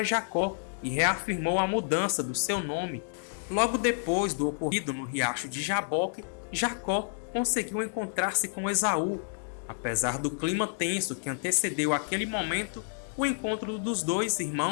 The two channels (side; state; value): right; silent; digital silence